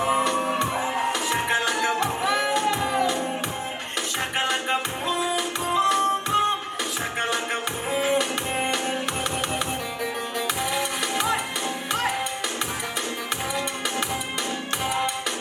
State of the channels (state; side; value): identical; both; correlation 1.00